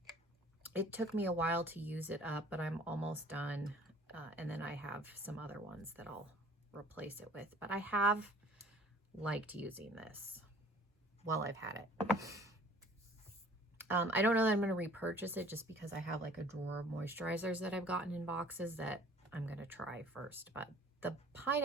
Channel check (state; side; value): normal; both; correlation 0.51